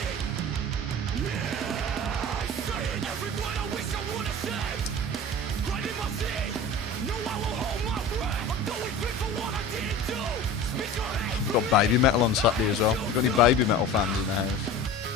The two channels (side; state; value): both; normal; correlation 0.36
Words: We've got Baby Metal on Saturday as well. We've got any Baby Metal fans in the house?